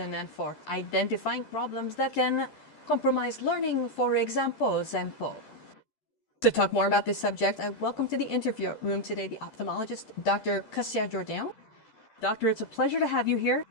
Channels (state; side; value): late; right; 11 ms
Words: and for identifying problems that can compromise learning, for example. To talk more about this subject, I welcome to the interview room today the ophthalmologist, Dr. Acácia Jordão. Doctor, it's a pleasure to have you here.